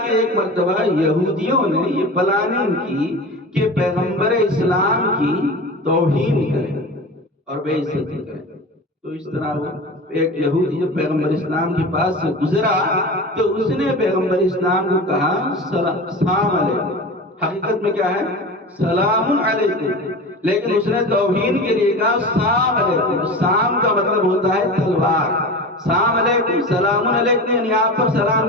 کہ ایک مرتبہ یہودیوں نے یہ پلاننگ کی کہ پیغمبر اسلام کی توہین کریں اور بے عزتی کریں۔ تو اس طرح وہ ایک یہودی جب پیغمبر اسلام کے پاس سے گزرا تو اس نے پیغمبر اسلام کو کہا سلام علیکم، حقیقت میں کیا ہے سلام علیکم، لیکن اس نے توہین کے لیے کہا سلام علیکم۔ سام کا مطلب ہوتا ہے تلوار، سلام علیکم سلام علیکم یعنی آپ پر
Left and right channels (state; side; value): normal; both; correlation 0.31